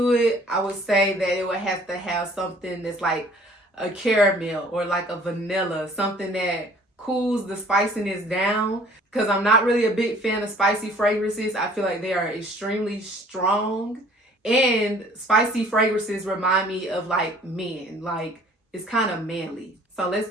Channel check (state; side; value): normal; both; correlation 0.54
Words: it, I would say that it would have to have something that's like a caramel or like a vanilla, something that cools the spiciness down. Because I'm not really a big fan of spicy fragrances. I feel like they are extremely strong. And spicy fragrances remind me of like men. Like it's kind of manly. So let's